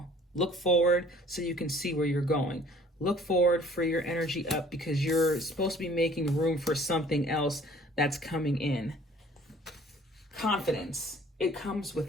Look forward so you can see where you're going. Look forward for your energy up because you're supposed to be making room for something else that's coming in. Confidence. It comes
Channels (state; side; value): normal; both; correlation 0.53